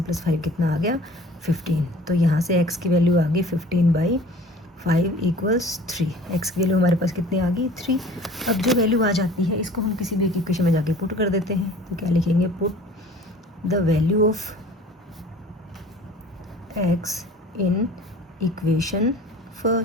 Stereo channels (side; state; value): both; normal; correlation 0.46